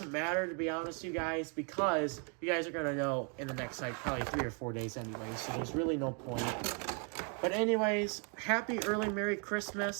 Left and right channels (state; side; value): quieter; left; 39.0 dB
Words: matter, to be honest with you guys, because you guys are going to know in the next, like, probably 3 or 4 days anyway, so there's really no point. But anyways, happy early Merry